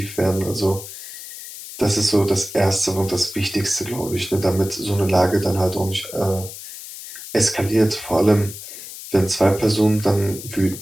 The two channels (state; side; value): noise; left; hiss, 12 dB below the sound